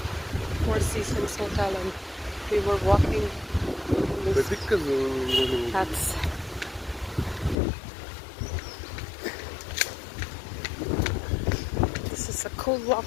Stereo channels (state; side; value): drops out; right; at 7.6 s